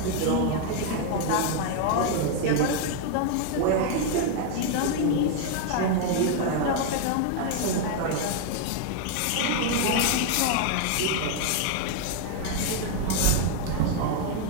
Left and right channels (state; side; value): different; both; correlation 0.00